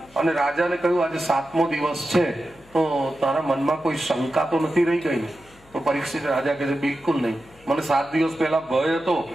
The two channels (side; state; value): left; noise; hum, 27 dB below the sound